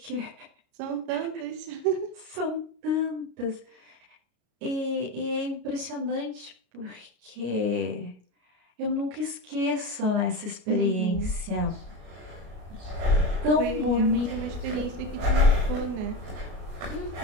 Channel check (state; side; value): late; left; 33 ms